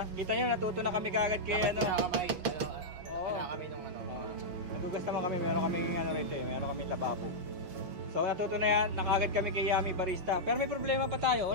Kita nyo, natuto na kami kagad kay ano. Oo. Kami nung ano. Nagugas naman kami, meron kami ano rito eh, meron kami lababo. So natuto na yan, nakagad kami kay Yummy Barista. Pero may problema pa tayo,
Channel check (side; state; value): left; late; 5.4 ms